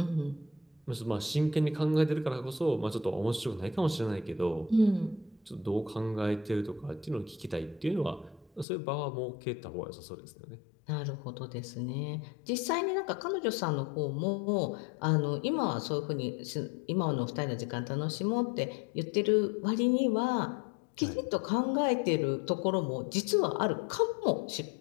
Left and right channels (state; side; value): drops out; right; at 8.7 s